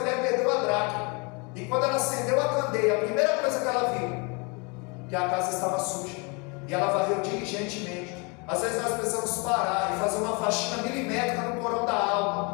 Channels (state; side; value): quieter; right; 31.2 dB